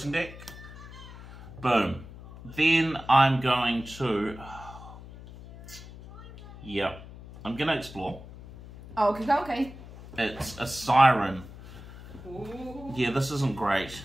deck. Boom. Then I'm going to... Yep. I'm going to explore. Oh, okay. It's a siren. Ooh. Yeah, this isn't great.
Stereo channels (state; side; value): noise; left; hum, 16 dB below the sound